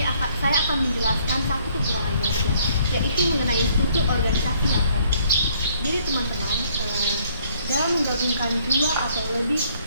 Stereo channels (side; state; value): both; inverted; correlation -0.64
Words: saya akan menjelaskan satu kekurangan merger, yaitu mengenai struktur organisasi yang kompleks. Jadi teman-teman, dalam menggabungkan dua atau lebih